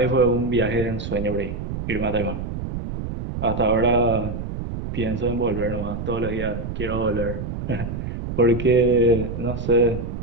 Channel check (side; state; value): right; noise; rumble, 6 dB below the sound